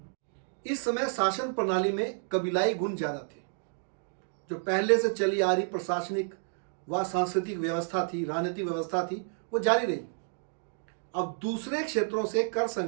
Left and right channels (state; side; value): silent; left; 58 dB below the other